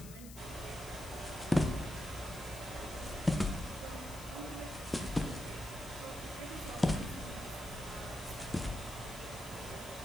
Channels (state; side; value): noise; left; hiss, 15 dB below the sound